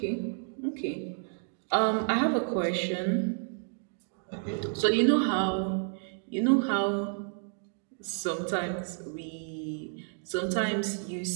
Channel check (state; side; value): silent; left; 57 dB below the other